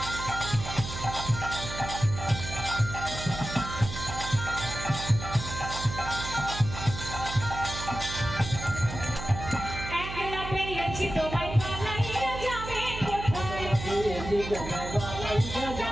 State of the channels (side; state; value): right; noise; hum, 8 dB below the sound